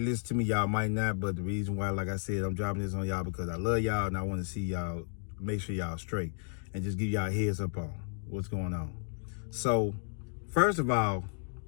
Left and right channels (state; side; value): silent; right; 56 dB below the other